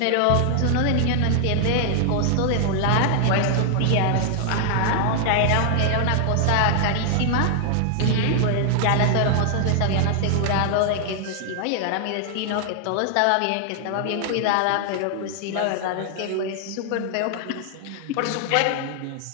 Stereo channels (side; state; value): both; different; correlation 0.00